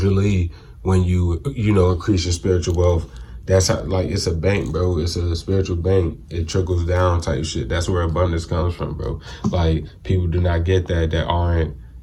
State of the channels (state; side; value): identical; both; correlation 1.00